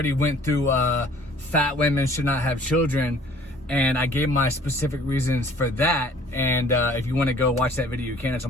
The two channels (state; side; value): normal; both; correlation 0.53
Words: went through fat women should not have children, and I gave my specific reasons for that. And if you want to go watch that video, you can. It's on